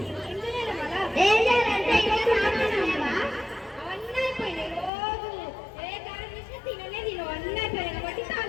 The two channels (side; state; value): right; drops out; at 4.9 s